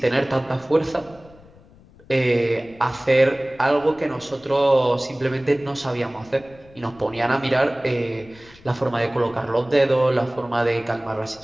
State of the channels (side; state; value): left; noise; rumble, 25 dB below the sound